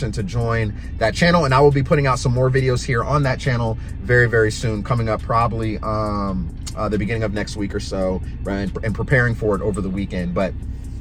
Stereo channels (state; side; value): identical; both; correlation 1.00